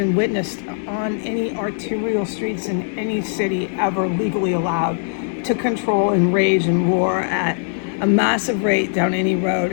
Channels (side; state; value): right; silent; digital silence